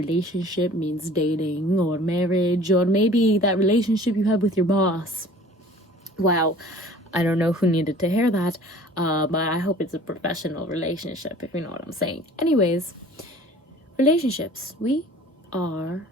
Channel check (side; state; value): both; normal; correlation 0.48